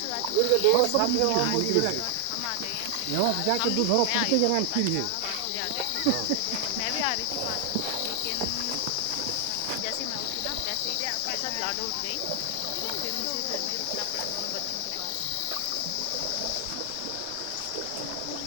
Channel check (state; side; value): different; both; correlation 0.00